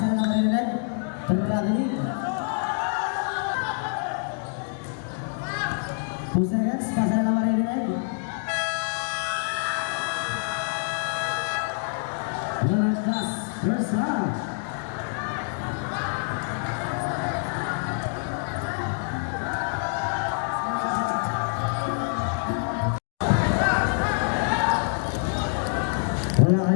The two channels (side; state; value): right; silent; 61 dB below the other